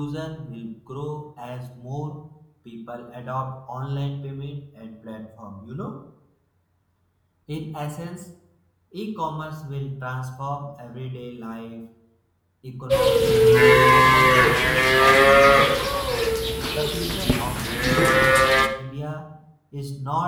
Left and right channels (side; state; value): both; identical; correlation 1.00